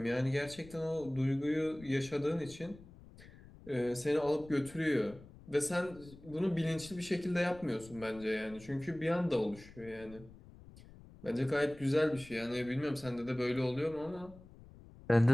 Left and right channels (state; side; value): noise; left; rumble, 20 dB below the sound